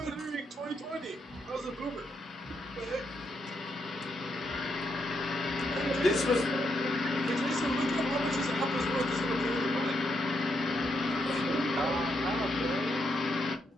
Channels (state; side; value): normal; both; correlation 0.79